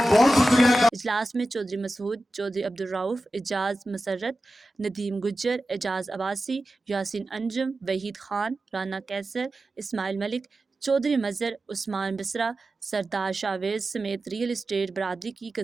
بہت شکریہ۔ اجلاس میں چودھری مسعود، چودھری عبدالرؤف، اعجاز مسرت، ندیم گجر، اعجاز عباسی، یاسین انجم، وحید خان، رانا کیسر، اسماعیل ملک، چودھری مظہر، عثمان بسرا، سردار شاویز سمیت ریئل اسٹیٹ برادری کی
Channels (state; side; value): normal; both; correlation 0.94